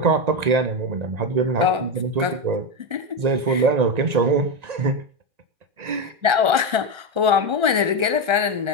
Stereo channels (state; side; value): late; left; 1.3 ms